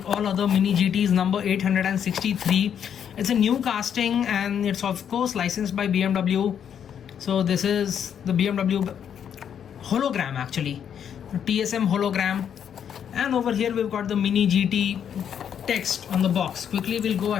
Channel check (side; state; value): right; quieter; 8.6 dB